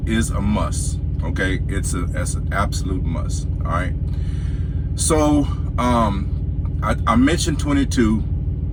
is a must. Okay, that's an absolute must. All right. So I mentioned 22.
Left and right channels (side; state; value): both; identical; correlation 1.00